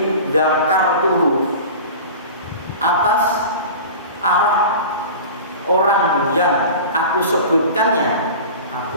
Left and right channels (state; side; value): inverted; both; correlation -0.35